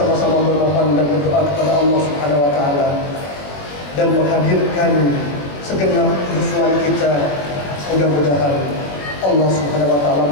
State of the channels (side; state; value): right; late; 21 ms